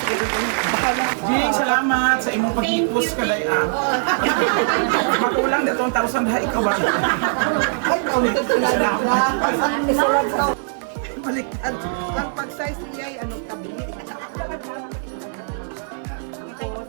Jing, salamat sa imong pag-ipos kaday ang. Makulang na 2,000 ha, ikaw ba? Ay, kaulitin ko na na. Baliktad. Ang pag-size niya ay anong tabi.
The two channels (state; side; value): silent; left; 65 dB below the other